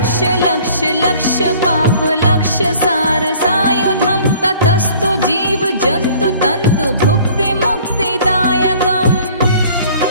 लक्ष लक्ष पाप लक्ष सार सायुधम ततस्तु जीव जंतु तंतु भुक्ति मुक्तिदायकम्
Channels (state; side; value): inverted; both; correlation -0.52